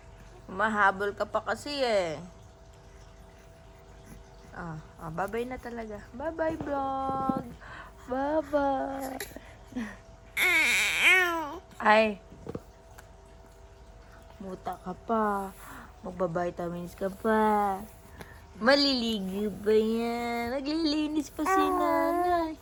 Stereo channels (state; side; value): identical; both; correlation 1.00